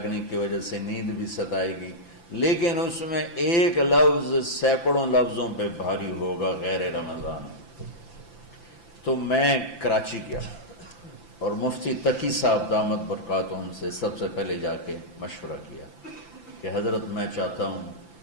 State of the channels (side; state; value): right; late; 5.9 ms